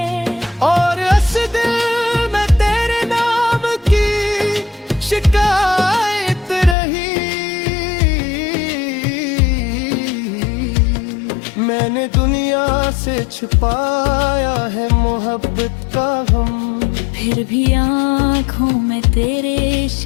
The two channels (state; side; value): drops out; right; at 6.8 s